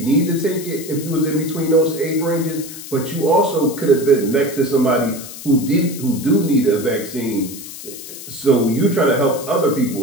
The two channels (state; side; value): noise; left; hiss, 12 dB below the sound